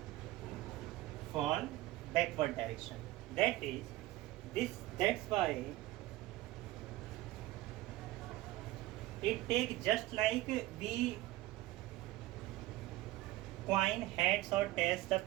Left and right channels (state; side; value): quieter; left; 17.1 dB